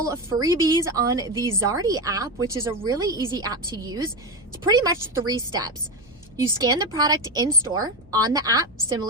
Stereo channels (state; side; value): normal; both; correlation 0.15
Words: of freebies on the Zardy app, which is a really easy app to use. It's pretty much 3 steps. You scan the product in store on the app,